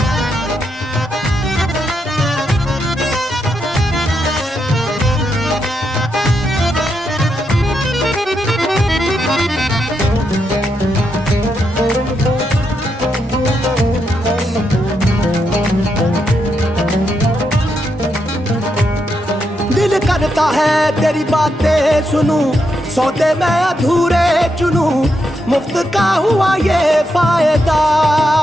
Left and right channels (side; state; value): both; normal; correlation 0.82